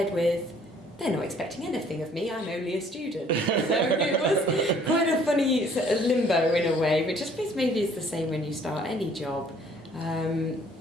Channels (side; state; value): both; normal; correlation 0.58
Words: with they're not expecting anything of me, I'm only a student. So it was quite a funny sort of limbo in a way, which I suppose maybe is the same when you start any job.